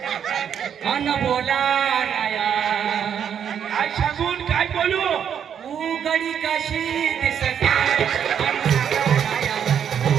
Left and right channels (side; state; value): left; quieter; 8.4 dB